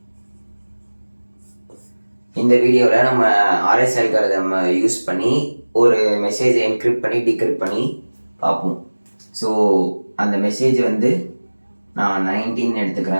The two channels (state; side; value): inverted; both; correlation -1.00